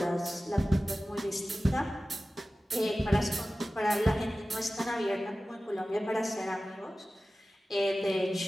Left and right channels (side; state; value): both; normal; correlation 0.96